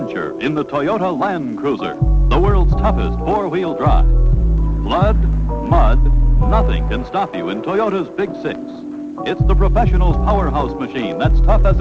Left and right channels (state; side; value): identical; both; correlation 1.00